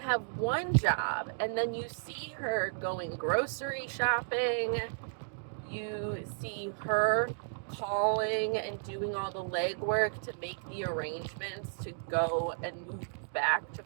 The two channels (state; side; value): silent; left; digital silence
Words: one job. And then you see her going grocery shopping. You see her calling and doing all the legwork to make the arrangements to go and move back to